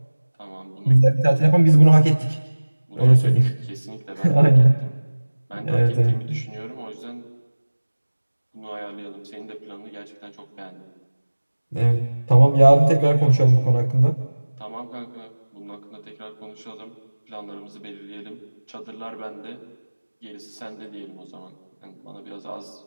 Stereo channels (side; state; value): both; inverted; correlation -1.00